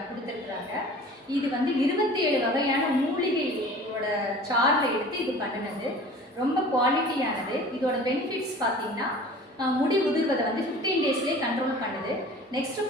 கொடுத்துருக்குறாங்க. இது வந்து 27 வகையான மூலிகையோட சார்ல எடுத்து இது பண்ணினது. ரொம்ப குவாலிட்டியானது. இதோட பெனிஃபிட்ஸ் பார்த்தீங்கன்னா முடி உதிர்வதை வந்து 15 டேஸ்லேயே கண்ட்ரோல் பண்ணுது. நெக்ஸ்ட்டு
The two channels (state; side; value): normal; both; correlation 0.43